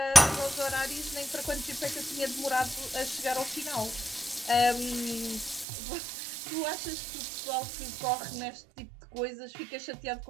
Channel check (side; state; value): left; drops out; at 5.7 s